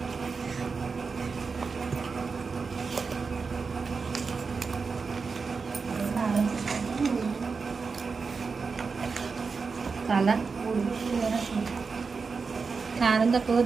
చాలా కారం తక్కువ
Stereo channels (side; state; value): left; quieter; 4.9 dB